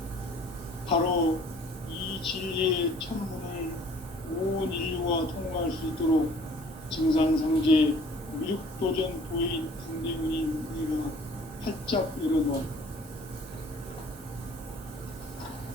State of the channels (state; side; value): normal; both; correlation 0.54